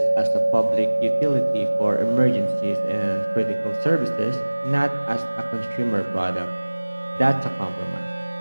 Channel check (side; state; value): both; inverted; correlation -1.00